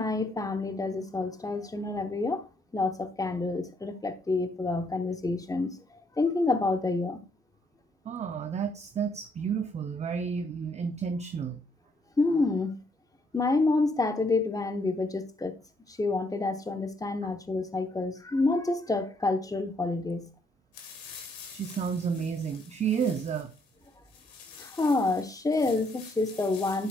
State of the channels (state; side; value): normal; both; correlation 0.71